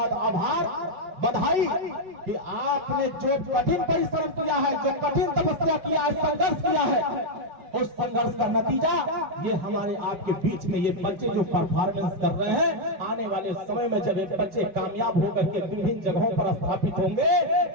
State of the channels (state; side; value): late; left; 5.3 ms